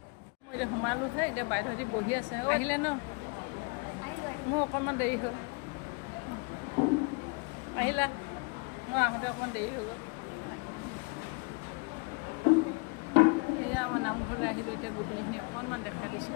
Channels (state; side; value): quieter; right; 32.3 dB